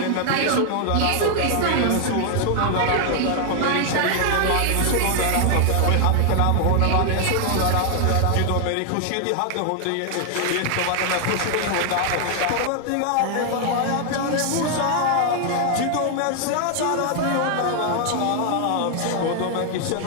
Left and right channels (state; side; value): different; both; correlation 0.00